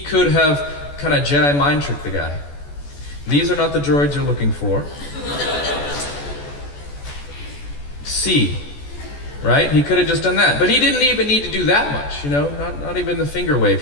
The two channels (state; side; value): late; right; 14 ms